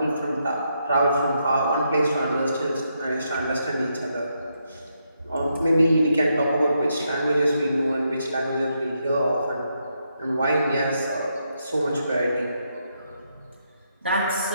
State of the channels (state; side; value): inverted; both; correlation -0.80